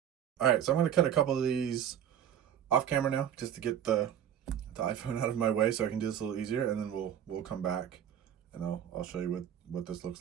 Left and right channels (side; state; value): left; quieter; 9.8 dB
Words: All right, so I'm going to cut a couple of these off camera now, just to get the iPhone out of my way, so I can do this a little easier, and then we'll come back, and I'll show you what this looks